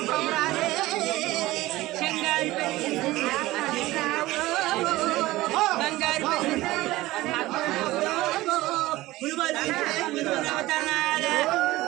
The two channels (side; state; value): left; quieter; 18.0 dB